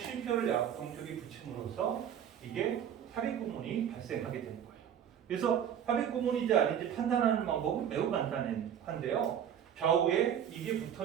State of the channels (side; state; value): left; quieter; 9.1 dB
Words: 약동적에 붙임으로써 이게 삽입 구문이 발생하게 되는 거예요. 그래서 삽입 구문인지 아닌지 판단하는 방법은 매우 간단한데요. 좌우에 이게